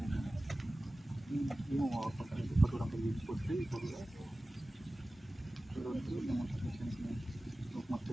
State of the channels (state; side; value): normal; both; correlation 0.97